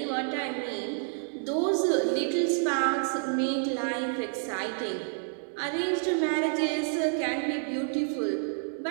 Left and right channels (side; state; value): left; silent; digital silence